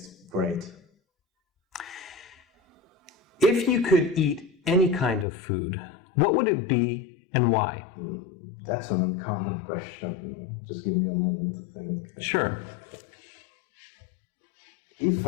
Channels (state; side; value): drops out; right; at 5.2 s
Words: great. If you could eat any kind of food, what would it be and why? That's an uncommon question. Just give me a moment to think. Sure. If